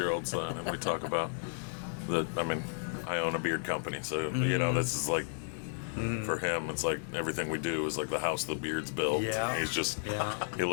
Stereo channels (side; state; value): right; silent; digital silence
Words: son, and we talk about I mean, I own a beard company, so this is like. For him, it's like everything we do is like the house the beard's built. Yeah. He's just, Yeah. he